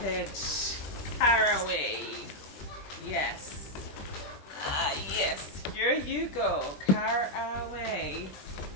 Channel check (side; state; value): right; late; 21 ms